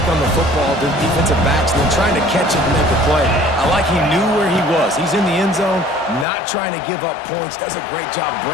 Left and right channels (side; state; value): right; drops out; at 6.2 s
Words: on the football, the defensive backs, and then trying to catch it and make a play. I like he knew where he was. He's in the end zone, not trying to give up points. Does a great job